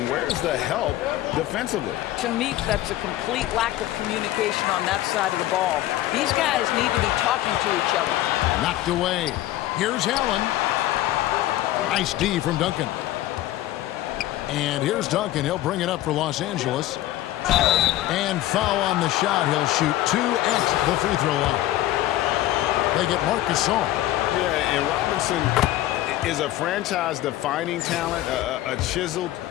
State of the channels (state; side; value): quieter; right; 14.8 dB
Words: where's the help defensively? To me, that's a complete lack of communication on that side of the ball. These guys need to be talking to each other. Knocked away. Here's Allen. Nice D from Duncan. And here's Duncan. He'll bring it up for Los Angeles. And foul on the shot. He'll shoot 2 at the free throw line. They get Marc Gasol. Yeah, and Robinson is a franchise-defining talent, a chiseled,